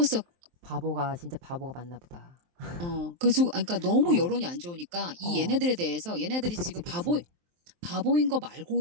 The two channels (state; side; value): late; left; 23 ms